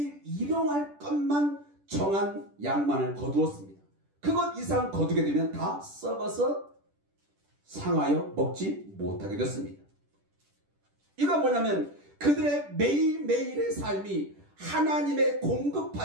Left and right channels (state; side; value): late; left; 10 ms